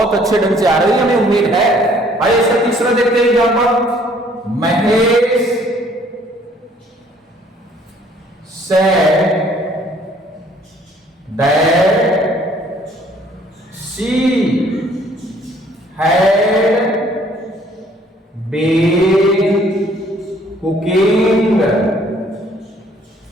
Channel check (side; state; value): both; normal; correlation 0.60